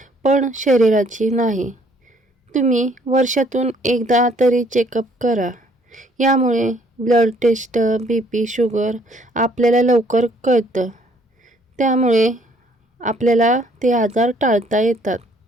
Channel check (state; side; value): normal; both; correlation 0.63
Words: पण शरीराची नाही. तुम्ही वर्षातून एकदा तरी चेकअप करा. यामुळे ब्लड टेस्ट, BP, शुगर आपल्याला लवकर कळतं. त्यामुळे आपल्याला ते आजार टाळता येतात.